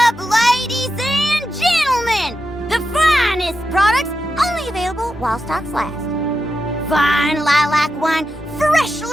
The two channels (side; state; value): both; normal; correlation 0.88